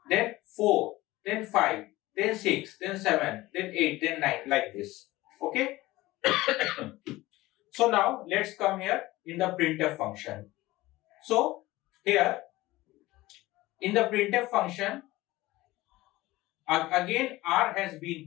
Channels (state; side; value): quieter; right; 18.5 dB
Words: then 4, then 5, then 6, then 7, then 8, then 9, like this. Okay. So now let's come here in the printf function. So here in the printf function, again R has been